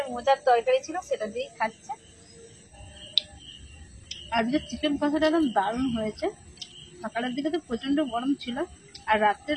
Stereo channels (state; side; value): identical; both; correlation 1.00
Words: মোচার তরকারি ছিল সেটা দিয়েই খাচ্ছে। আজকে চিকেন কষাটা একদম দারুণ হয়েছে। সকালের দিকে তো প্রচন্ড গরম ছিল, আর